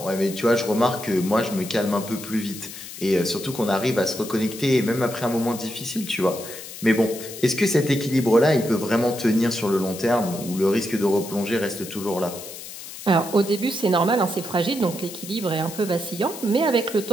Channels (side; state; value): left; noise; hiss, 12 dB below the sound